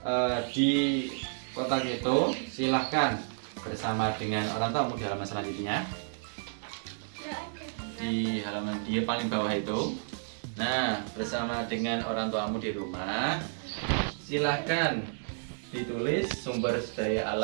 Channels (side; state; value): left; silent; digital silence